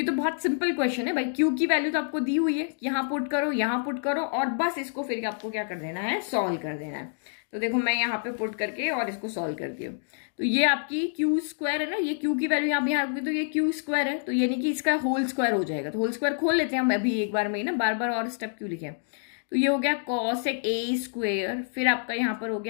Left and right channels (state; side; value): silent; right; digital silence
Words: तो बहुत सिंपल क्वेश्चन है भाई, क्यू की वैल्यू तो आपको दी हुई है, यहाँ पुट करो, यहाँ पुट करो, और बस इसको फिर आपको क्या कर देना है, सॉल्व कर देना है। तो देखो मैं यहाँ पे पुट करके और इसको सॉल्व कर दिया, तो ये आपकी क्यू स्क्वायर है ना, ये क्यू की वैल्यू यहाँ पे यहाँ रखोगे तो ये क्यू स्क्वायर है, तो यानी कि इसका होल स्क्वायर हो जाएगा, तो होल स्क्वायर खोल लेते हैं हम अभी एक बार में ही ना, बार बार और स्टेप क्यों लिखे। तो ये हो गया कॉसेक ए स्क्वायर, फिर आपका यहाँ पर हो